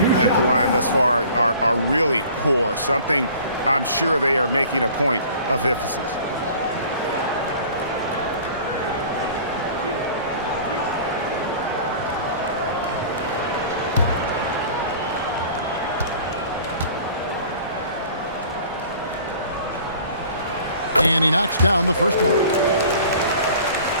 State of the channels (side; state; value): both; inverted; correlation -0.47